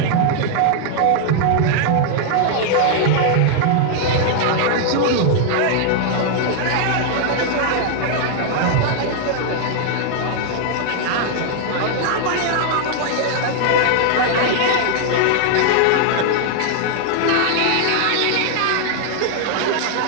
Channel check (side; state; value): both; different; correlation 0.00